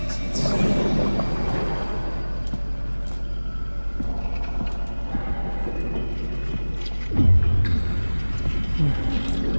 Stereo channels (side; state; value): both; inverted; correlation -1.00